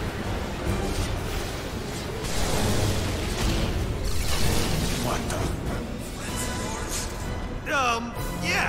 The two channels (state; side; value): identical; both; correlation 1.00